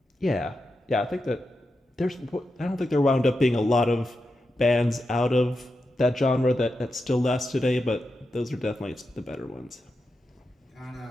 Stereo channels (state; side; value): normal; both; correlation 0.88